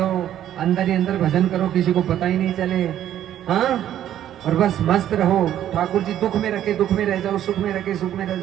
अंदर ही अंदर भजन करो, किसी को पता ही नहीं चले। हाँ, और बस मस्त रहो। ठाकुर जी दुख में रखे दुख में रह जाओ, सुख में रखे सुख में रह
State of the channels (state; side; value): quieter; left; 11.3 dB